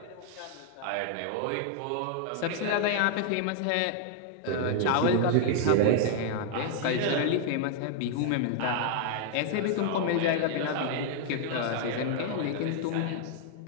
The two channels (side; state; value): both; different; correlation 0.00